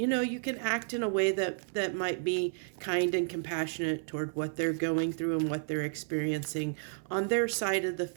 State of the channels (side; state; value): left; silent; 55 dB below the other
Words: can act in a way that might be kind and compassionate toward what they're going through and what they're experiencing on their side of the